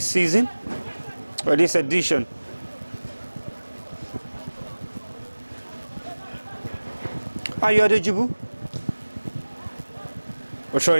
season, or this edition. Ayo Adejibu. We're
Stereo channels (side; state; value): both; inverted; correlation -1.00